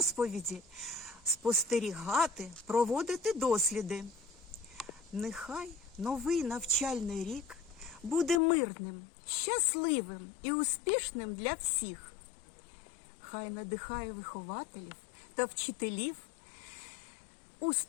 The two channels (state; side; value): drops out; right; at 8.4 s